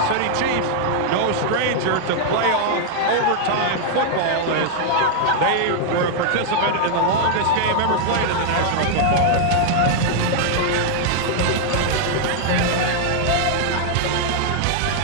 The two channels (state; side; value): different; both; correlation -0.01